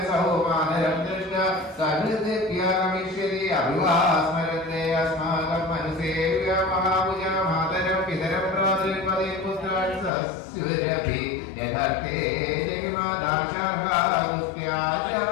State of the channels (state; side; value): drops out; right; at 10.1 s